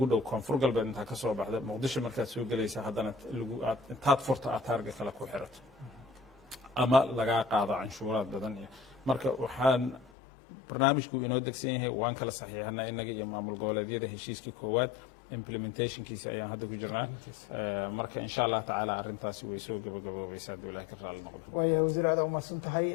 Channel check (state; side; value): drops out; right; at 10.1 s